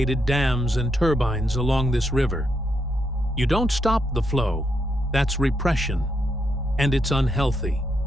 dams and turbines along this river. You don't stop the flow, that's repression, and it's unhealthy.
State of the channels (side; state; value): both; normal; correlation 0.80